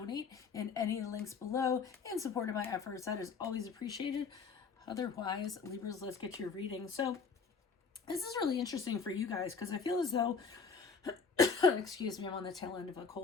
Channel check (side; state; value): right; quieter; 5.2 dB